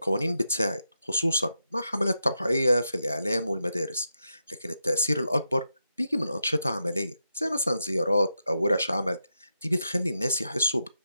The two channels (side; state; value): both; inverted; correlation -0.86